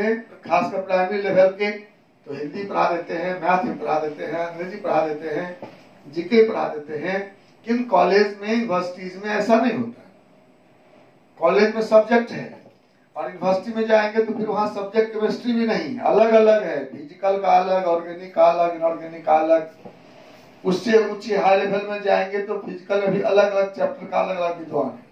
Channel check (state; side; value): identical; both; correlation 1.00